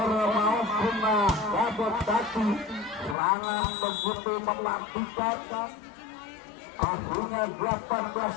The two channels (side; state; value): right; drops out; at 3.2 s